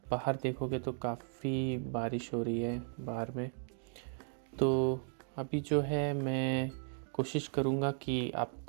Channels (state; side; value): silent; left; 54 dB below the other